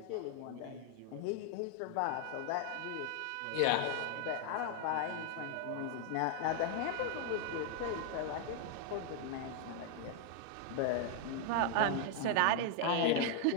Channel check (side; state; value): both; different; correlation 0.00